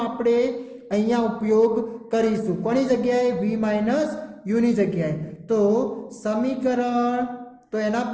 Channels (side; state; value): both; identical; correlation 1.00